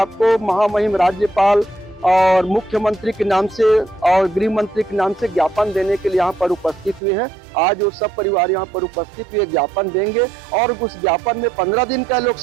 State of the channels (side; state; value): left; drops out; at 7.0 s